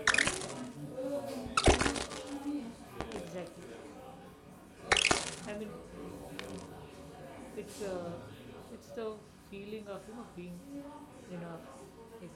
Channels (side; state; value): both; identical; correlation 1.00